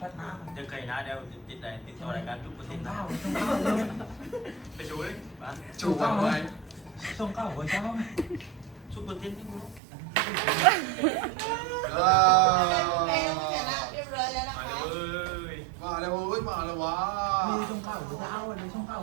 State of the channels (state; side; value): drops out; left; at 9.8 s